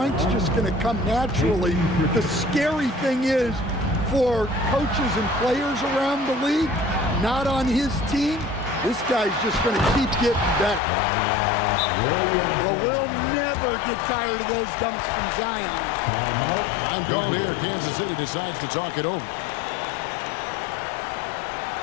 just going to come naturally. The scary thing is for coaches and players around the league, not on his team, this guy's just going to keep getting better. Well, we'll never get tired of those dunks from Zion. I'm called here. Kansas City decides to talk it over.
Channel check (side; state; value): right; drops out; at 10.8 s